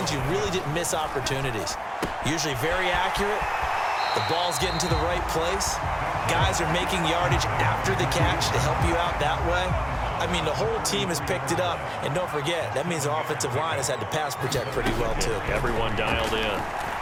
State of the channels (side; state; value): both; identical; correlation 1.00